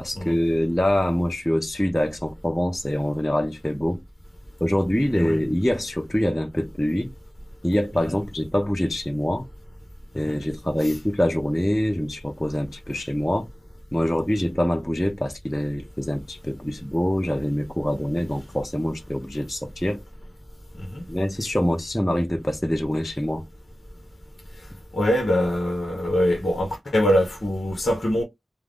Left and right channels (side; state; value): both; normal; correlation 0.96